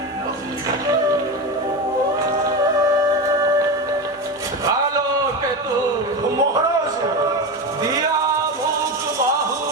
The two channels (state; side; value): normal; both; correlation 0.20